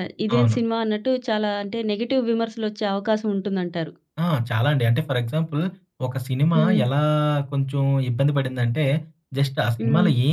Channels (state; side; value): identical; both; correlation 1.00